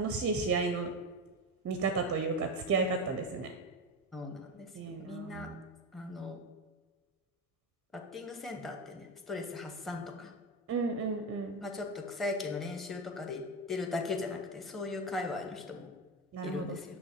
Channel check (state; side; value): normal; both; correlation 0.16